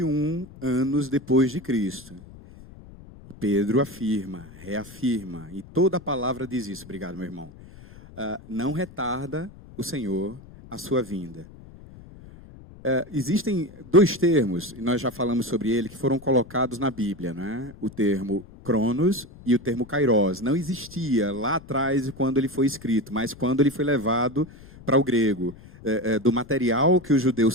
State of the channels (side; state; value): left; noise; rumble, 19 dB below the sound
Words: anos depois de Cristo. Pedro afirma, reafirma, e toda a palavra diz isso. Obrigado, meu irmão. Não retarda o Senhor a sua vinda. Existem 2 termos, e nós já falamos sobre ele, que foram colocados na Bíblia, né? O termo Cronos e o termo Kairos. Não existia lá atrás quando ele foi escrito, mas quando ele foi levado para o grego, do material que os